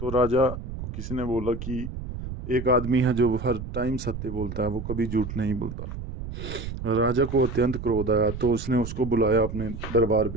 तो राजा को किसी ने बोला कि एक आदमी है जो हर टाइम सत्य बोलता है, वो कभी झूठ नहीं बोलता। राजा को अत्यंत क्रोध आया, तो उसने उसको बुलाया अपने दरबार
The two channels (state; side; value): noise; right; rumble, 8 dB below the sound